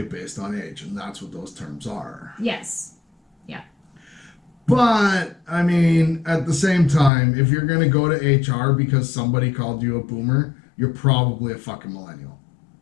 based on age, and that's what those terms are. Yes. Yeah. But, at the same time, if you're going to go to HR because somebody called you a boomer, you're probably a fucking millennial.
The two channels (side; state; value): right; drops out; at 7.1 s